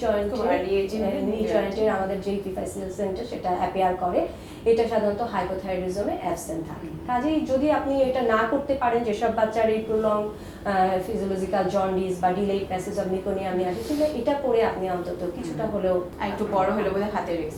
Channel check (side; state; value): both; identical; correlation 1.00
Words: জয়েন্টের আমাদের যে প্রিফাইসিয়াল সেন্টার সেটা অ্যাপিয়ার করে, এটা সাধারণত হাইপোথাইরয়েডিজমে অ্যাবসেন্ট থাকে। কাজেই যদি আপনি এটা না করতে পারেন, যেসব বাচ্চার এই প্রলং ফিজিওলজিক্যাল জন্ডিস বা ডিলেড প্যাসেজ অফ মেকোনিয়াম আসে, তাহলে এটা করে আপনি অন্তত কিছুটা হলেও আর একটু বড় হলে বোধহয় হাতের